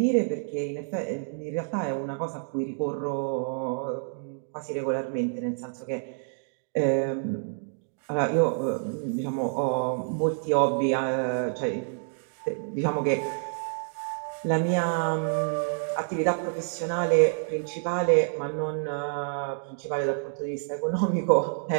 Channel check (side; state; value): left; silent; digital silence